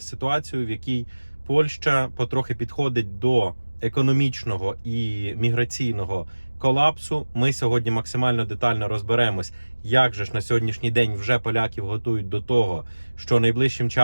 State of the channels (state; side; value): inverted; both; correlation -1.00